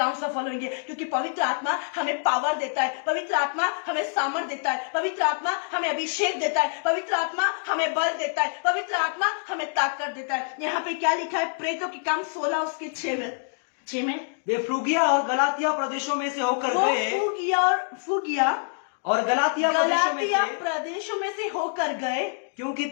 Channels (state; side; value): silent; right; 61 dB below the other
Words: सफल होंगे, क्योंकि पवित्र आत्मा हमें पावर देता है, पवित्र आत्मा हमें सामर्थ देता है, पवित्र आत्मा हमें अभिषेक देता है, पवित्र आत्मा हमें बल देता है, पवित्र आत्मा हमें ताकत देता है। यहाँ पे क्या लिखा है? प्रेतों के काम 16 उसके 6 में वे फ्रूगिया और गलातिया प्रदेशों में से होकर गए, फूगिया और गलातिया प्रदेशों में से होकर गए, क्योंकि